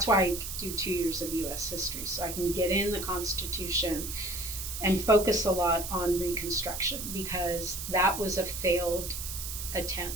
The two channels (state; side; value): noise; right; hiss, 6 dB below the sound